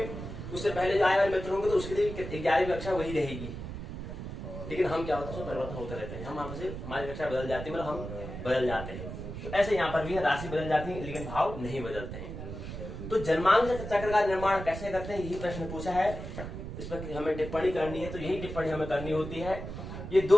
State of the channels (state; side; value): noise; right; rumble, 8 dB below the sound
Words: उससे पहले जो आने वाले मित्र होंगे, तो उसके लिए 11वीं कक्षा वही रहेगी। लेकिन हम क्या होता है, परिवर्तन होते रहते हैं। हम हमारी कक्षा बदल जाती है, मतलब हम बदल जाते हैं। तो ऐसे यहाँ पर भी है, राशि बदल जाती है लेकिन भाव नहीं बदलते हैं। तो जन्मांक चक्र का निर्माण कैसे करते हैं, यही प्रश्न पूछा है। इस पर हमें टिप्पणी करनी है, तो यही टिप्पणी हमें करनी होती है। ये